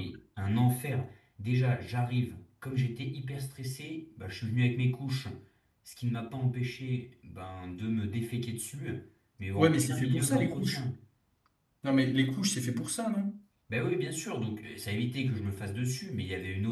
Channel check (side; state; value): both; identical; correlation 1.00